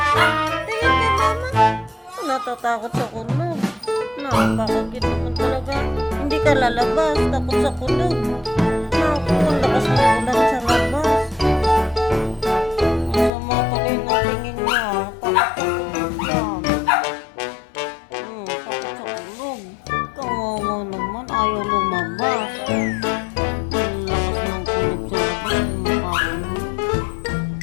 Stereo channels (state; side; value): drops out; right; at 13.3 s